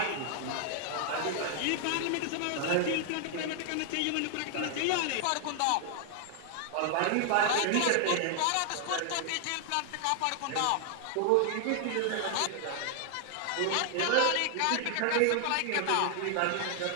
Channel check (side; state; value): both; different; correlation 0.00